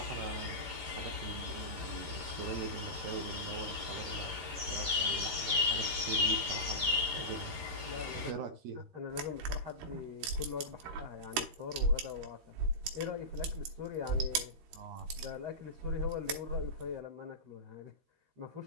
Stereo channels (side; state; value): left; late; 13 ms